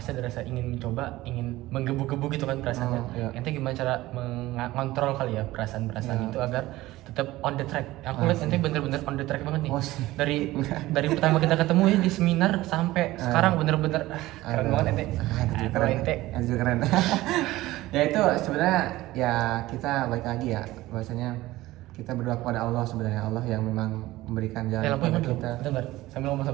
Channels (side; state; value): left; quieter; 17.4 dB